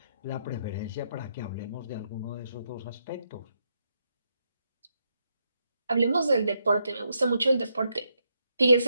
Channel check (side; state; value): both; inverted; correlation -0.80